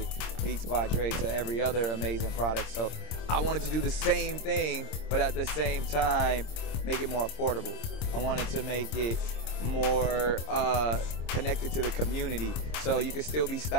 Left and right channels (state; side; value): late; right; 26 ms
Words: Beats by Dre to every other amazing product. So I wanted to do the same thing, but at the same time make it more affordable. I wanted to make it more connected to the community, so you can still be